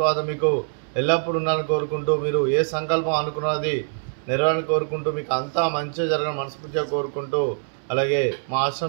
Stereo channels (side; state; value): left; silent; 63 dB below the other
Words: మీకు ఎల్లప్పుడూ ఉండాలని కోరుకుంటూ మీరు ఏ సంకల్పం అనుకున్నది నెరవేరాలని కోరుకుంటూ మీకు అంతా మంచిగా జరగాలని మనస్ఫూర్తిగా కోరుకుంటూ అలాగే మా